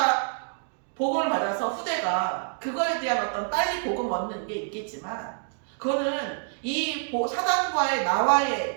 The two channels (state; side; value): silent; left; digital silence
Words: 복음을 받아서 후대가 그거에 대한 어떤 빨리 복음 얻는 게 있겠지만 그거는 이 사단과의 나와의